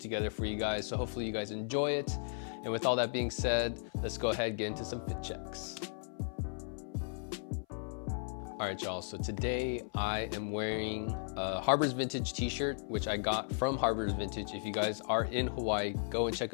together for you guys. So hopefully you guys enjoy it. And with all that being said, let's go ahead and get into some fit checks. All right, y'all, so today I am wearing a Harbor's Vintage t-shirt, which I got from Harbor's Vintage. If you guys are in Hawaii, go and check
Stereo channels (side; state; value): right; silent; 54 dB below the other